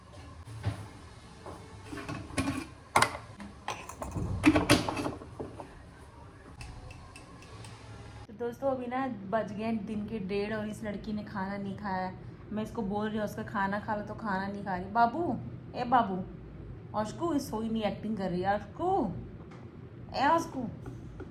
तो दोस्तों अभी ना बज गए दिन के 1:30 और इस लड़की ने खाना नहीं खाया है। मैं इसको बोल रही हूँ उसका खाना खा लो तो खाना नहीं खा रही। बाबू, ए बाबू, ऑस्कू सोई नहीं, एक्टिंग कर रही है। ऑस्कू, ए ऑस्कू,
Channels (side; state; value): both; identical; correlation 1.00